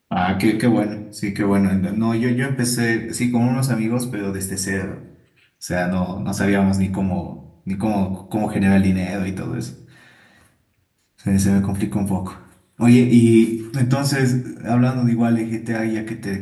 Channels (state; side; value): identical; both; correlation 1.00